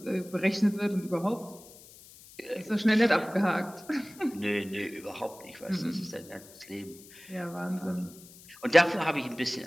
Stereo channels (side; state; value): left; noise; hiss, 21 dB below the sound